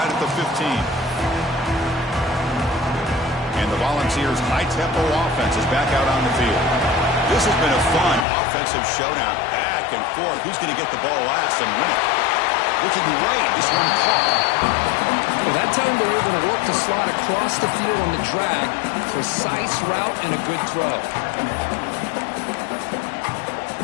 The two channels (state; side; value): drops out; right; at 8.2 s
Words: at the 15. And the Volunteers' high-tempo offense is back out on the field. This has been a fun offensive showdown. Back and forth. Who's going to get the ball last and win it? Looking right. This one caught. Well, that time they're able to work the slot across the field on the drag. Precise route and a good throw.